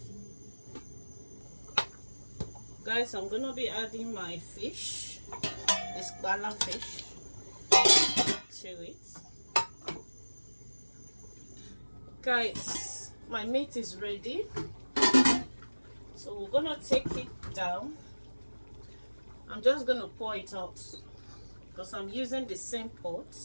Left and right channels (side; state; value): both; inverted; correlation -1.00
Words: Guys, I'm going to be adding my fish, this bala fish, to it. Guys, my meat is ready. So we're going to take it down. I'm just going to pour it out because I'm using the same pot.